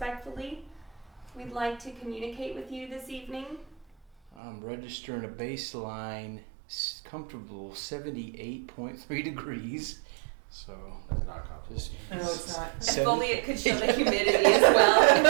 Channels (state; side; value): drops out; left; at 4.3 s